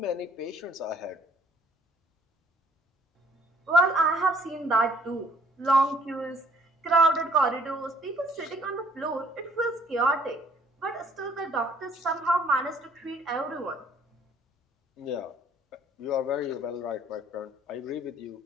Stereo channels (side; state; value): both; normal; correlation 0.60